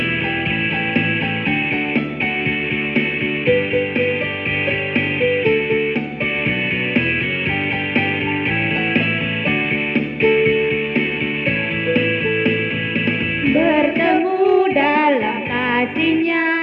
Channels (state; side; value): identical; both; correlation 1.00